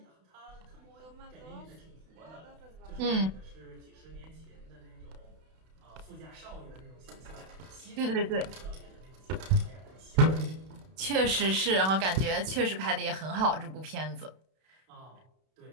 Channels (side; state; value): left; late; 32 ms